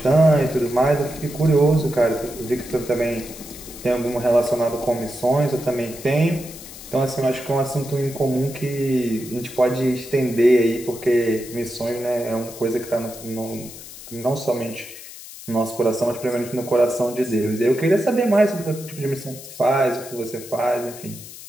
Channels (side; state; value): left; noise; hiss, 15 dB below the sound